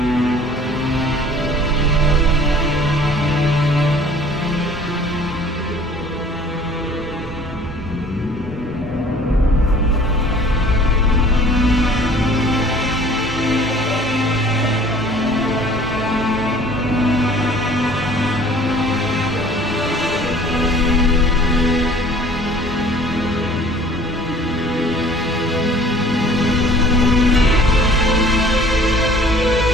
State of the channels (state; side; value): normal; both; correlation 0.51